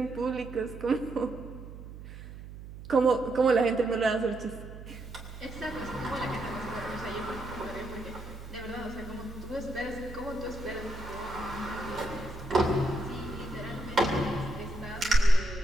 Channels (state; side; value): noise; right; hum, 13 dB below the sound